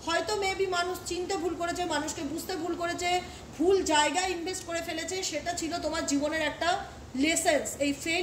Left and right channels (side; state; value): both; identical; correlation 1.00